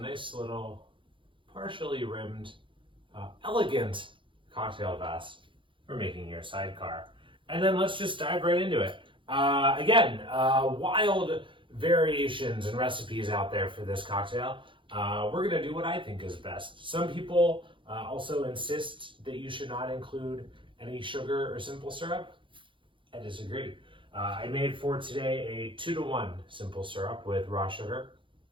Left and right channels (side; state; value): left; late; 0.24 ms